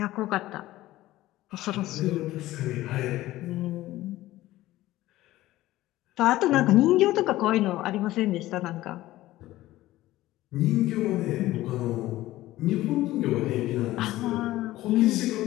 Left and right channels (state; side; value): quieter; right; 16.2 dB